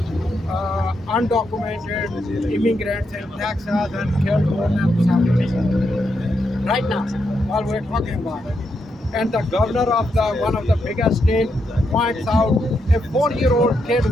undocumented immigrants in Texas and killed more than 7 people. Right now, while we're talking about it. And the governor of the one of the biggest states points out a 4-year-old kid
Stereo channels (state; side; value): normal; both; correlation 0.82